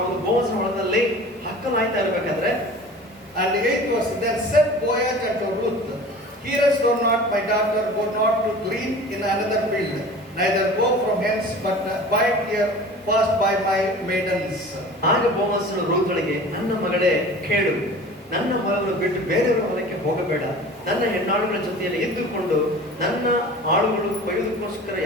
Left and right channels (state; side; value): normal; both; correlation 0.40